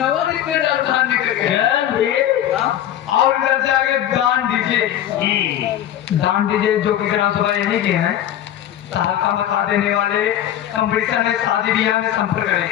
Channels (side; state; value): right; quieter; 11.4 dB